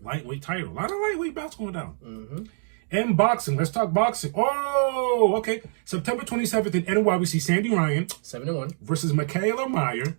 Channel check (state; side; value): silent; left; digital silence